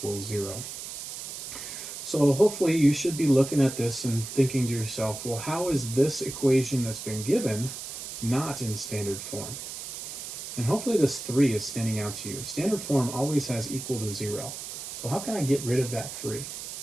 0. So hopefully you should be looking at this and thinking to yourself, well, how is this equation that's been given not in standard form? And hopefully this 3 is standing out to you. Standard form always has equal to 0. So how can I get rid of that 3?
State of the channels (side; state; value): right; noise; hiss, 8 dB below the sound